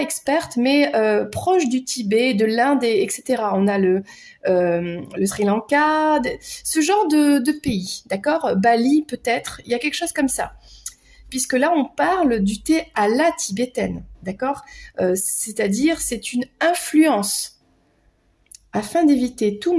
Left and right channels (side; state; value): both; identical; correlation 1.00